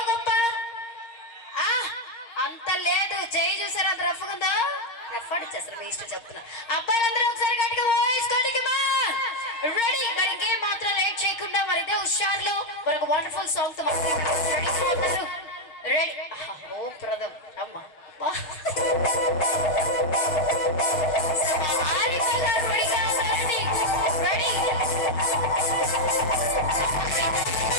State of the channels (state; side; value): late; right; 6.5 ms